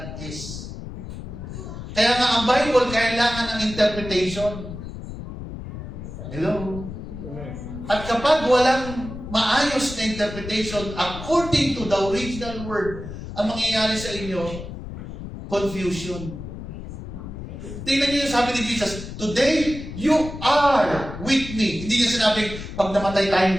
is. Kaya nga ang Bible kailangan ng interpretation. Hello? At kapag walang maayos na interpretation according to the original word, ang mangyayari sa inyo, confusion. Tingnan niyo yung sabi ni Jesus, today, you are with me. Hindi niya sinabing, pag namatay tayong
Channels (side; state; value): left; noise; rumble, 10 dB below the sound